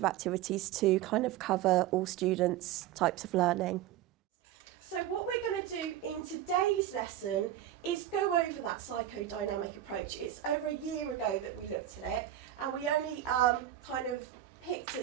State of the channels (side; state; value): left; quieter; 12.0 dB